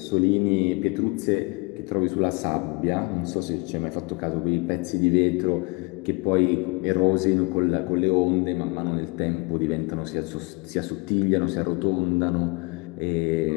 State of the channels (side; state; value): right; quieter; 28.7 dB